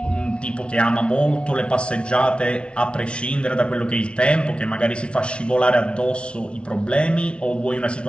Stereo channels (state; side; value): late; right; 0.058 ms